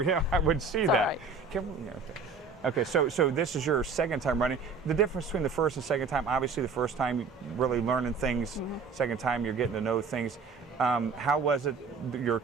yeah, I would see It's all that. right. Okay, so this is your second time running. The difference between the first and second time, obviously the first time you're really learning things, Mm-hmm. second time you're getting to know things. How was it, your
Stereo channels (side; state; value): left; quieter; 4.7 dB